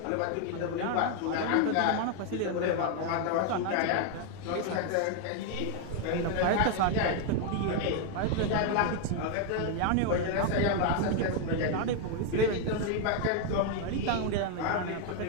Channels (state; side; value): different; both; correlation 0.00